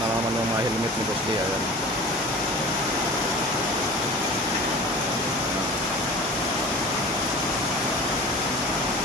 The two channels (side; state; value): both; normal; correlation 0.39